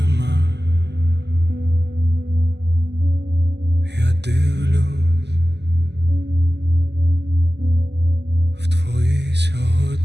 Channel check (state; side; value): late; left; 0.50 ms